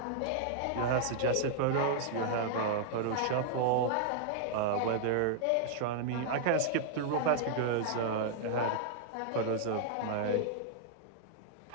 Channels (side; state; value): both; different; correlation -0.01